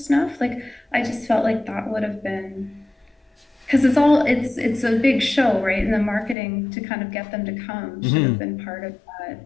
Like, I just felt like that would have been, because it's a big show, right? And the marketing to kind of get them to come should have been part of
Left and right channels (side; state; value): right; drops out; at 6.4 s